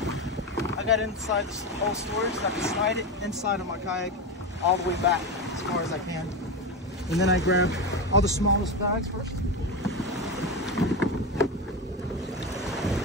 I got inside the whole storage so I can slide it inside of my kayak all the way back as far as I can. And then I grab all the smallest bags first.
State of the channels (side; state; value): both; normal; correlation 0.17